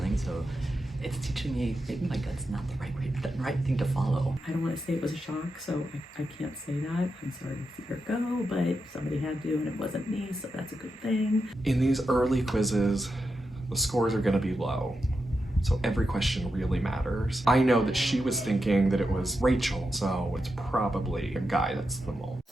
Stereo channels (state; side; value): normal; both; correlation 0.87